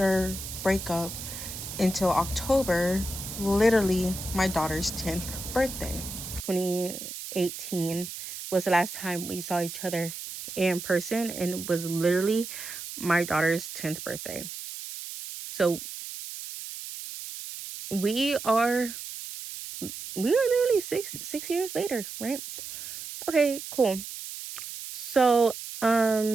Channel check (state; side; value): noise; right; hiss, 9 dB below the sound